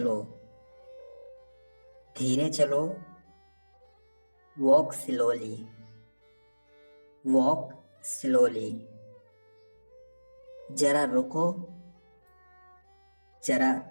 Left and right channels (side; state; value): both; inverted; correlation -1.00